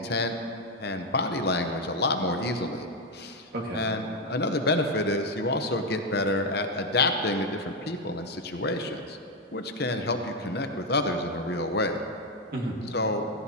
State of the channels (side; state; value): both; normal; correlation 0.05